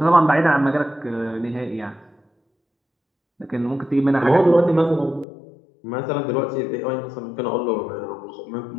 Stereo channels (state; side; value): drops out; right; at 5.2 s